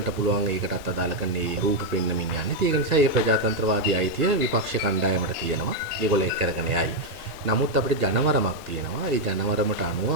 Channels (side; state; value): both; normal; correlation 0.01